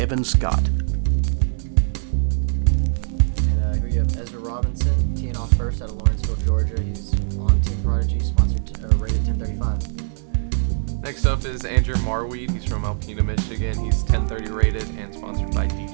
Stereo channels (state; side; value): silent; left; digital silence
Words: Scott. And here you have Ezra Robinson, teeing off first out of Lawrenceville, Georgia. He's on Team Prodigy, rated 1035. Next up is Andrew Marwede. He's from Alpena, Michigan. He's 1030 rated and sponsored by